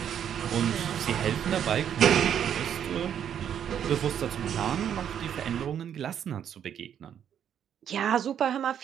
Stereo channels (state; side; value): quieter; left; 9.2 dB